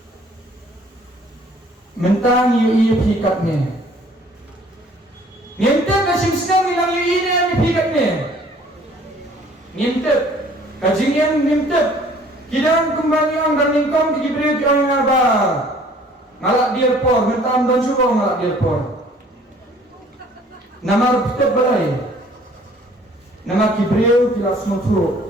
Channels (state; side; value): normal; both; correlation 0.55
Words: mentang yu pikatnya ngintep kasing senang bilang yu ini yang pikatnya ngintep kajing yang ngintep kidang kembali ang darlingkong kikibri ang ngaba ngalak dirpor mentang dan suruh ngalak dirpor namar pitep balai nama kibriu kilas mutu